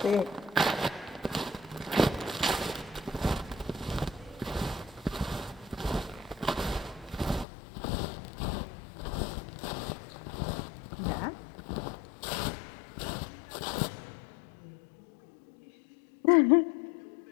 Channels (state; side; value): drops out; right; at 7.5 s